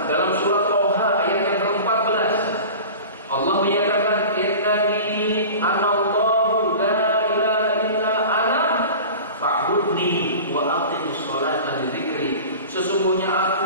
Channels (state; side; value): inverted; both; correlation -0.37